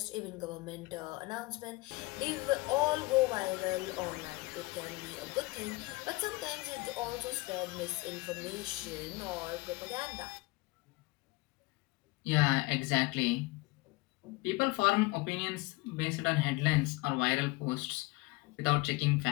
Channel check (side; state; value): right; quieter; 23.1 dB